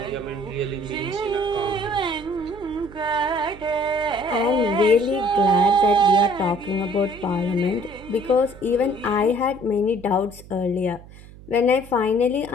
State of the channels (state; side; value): noise; right; hum, 19 dB below the sound